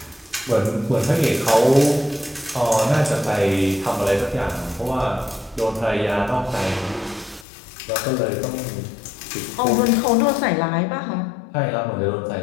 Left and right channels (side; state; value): right; drops out; at 7.5 s